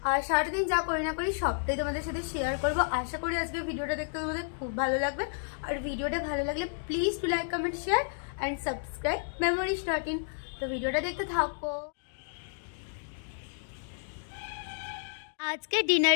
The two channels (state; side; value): silent; right; digital silence